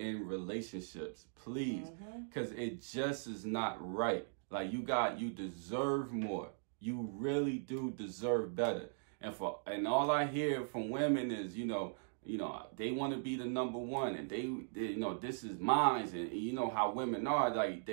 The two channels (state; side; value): silent; left; digital silence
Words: relationships. Please. Because it just is not right. Like, you deserve more. You really do deserve better. And all I hear from women is, you know, they want to be the number one, and they you know, this is mine. And you know how women are, like,